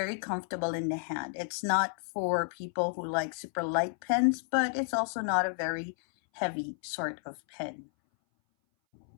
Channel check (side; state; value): right; silent; 57 dB below the other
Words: comfortable in the hand. It's not for people who like super light pens, but it's also not a very heavy sort of pen.